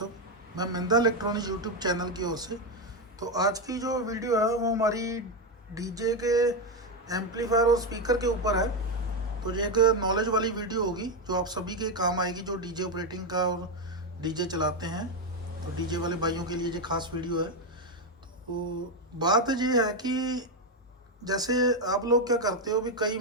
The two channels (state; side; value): normal; both; correlation 0.07